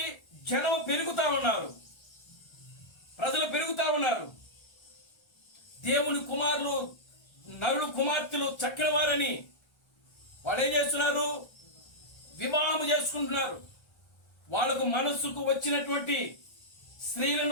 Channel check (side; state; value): right; late; 1.3 ms